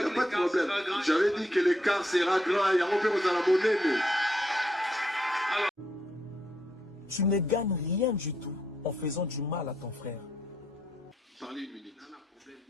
pas de problème. J'avais dit que l'écart sera grand et on peut vous en abonner. Tu ne gagnes rien du tout en faisant du mal à ton frère. Parlez une minute.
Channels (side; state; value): both; normal; correlation 0.76